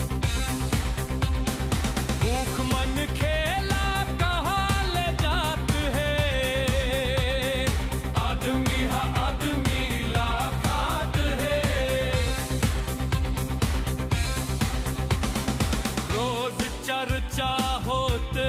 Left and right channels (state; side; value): identical; both; correlation 1.00